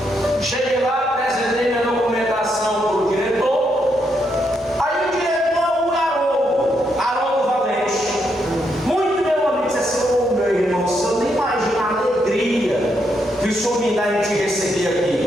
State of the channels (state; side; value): normal; both; correlation 0.79